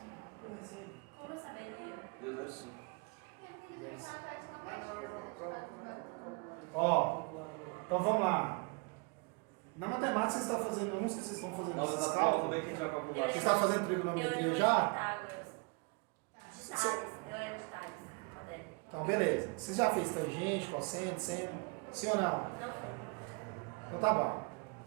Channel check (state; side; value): quieter; left; 31.3 dB